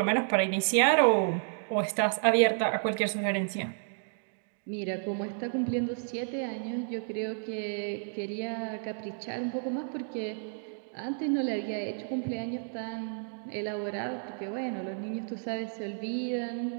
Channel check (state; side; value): silent; left; digital silence